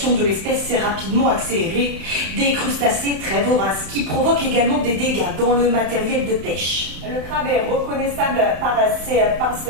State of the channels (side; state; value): left; late; 31 ms